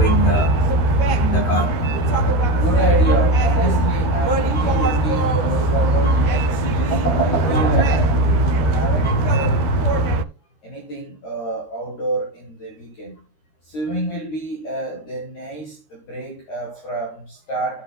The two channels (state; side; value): late; right; 13 ms